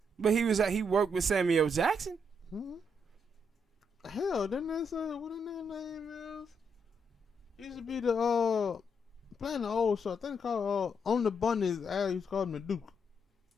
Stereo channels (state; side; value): normal; both; correlation 0.77